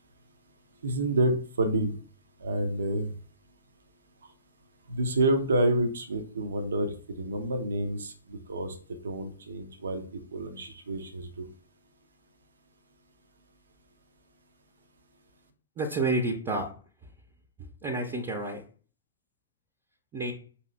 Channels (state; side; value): inverted; both; correlation -0.53